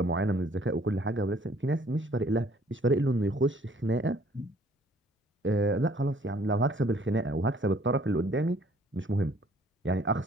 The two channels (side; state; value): both; normal; correlation 0.59